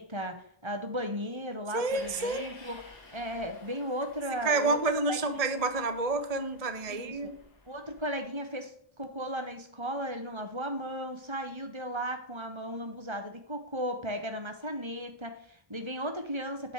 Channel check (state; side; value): late; left; 1.7 ms